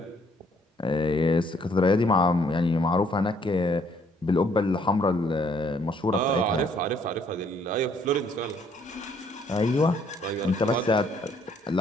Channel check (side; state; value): both; normal; correlation 0.65